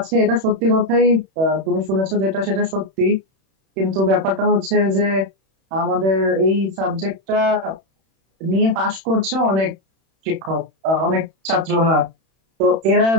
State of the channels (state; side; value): late; left; 31 ms